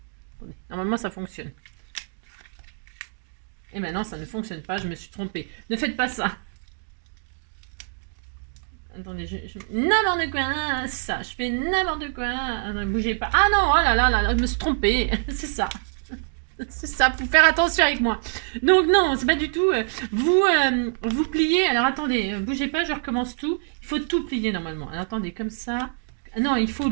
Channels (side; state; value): left; silent; digital silence